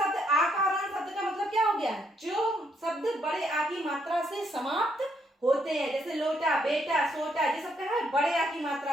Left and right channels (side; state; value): both; normal; correlation 0.73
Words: आकारांत शब्द का मतलब क्या हो गया, जो शब्द बड़े आ की मात्रा से समाप्त होते हैं, जैसे लोटा, बेटा, सोटा, ये सब क्या है बड़े आ की